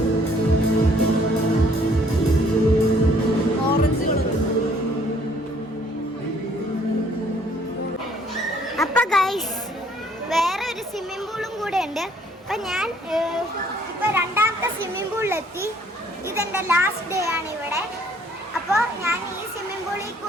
അപ്പൊ ഗൈസ് വേറെ ഒരു സ്വിമ്മിംഗ് പൂളും കൂടെ ഉണ്ട്. അപ്പൊ ഞാൻ ഇപ്പൊ രണ്ടാമത്തെ സ്വിമ്മിംഗ് പൂളിലെത്തി. ഇതെന്റെ ലാസ്റ്റ് ഡേ ആണ് ഇവിടെ. അപ്പോൾ ഞാൻ ഈ സ്വിമ്മിംഗ് പൂളിൽ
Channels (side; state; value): both; normal; correlation 0.61